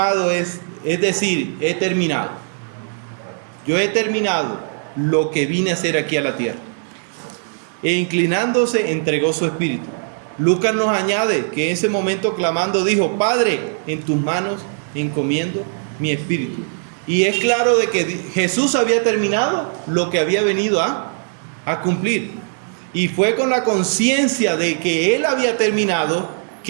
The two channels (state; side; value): silent; left; digital silence